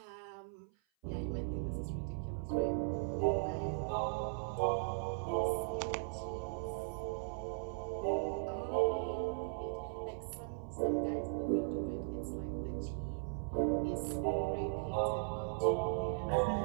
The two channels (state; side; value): silent; left; 52 dB below the other